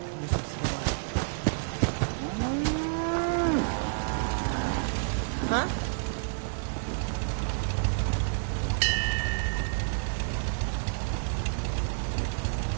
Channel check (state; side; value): silent; left; 58 dB below the other